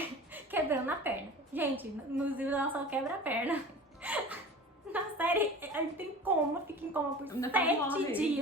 quebrando a perna. Gente, nos livros ela só quebra a perna. Na série, ela fica em coma por 7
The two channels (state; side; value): normal; both; correlation 0.38